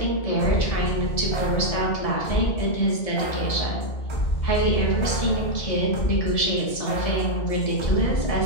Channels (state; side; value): late; right; 1.7 ms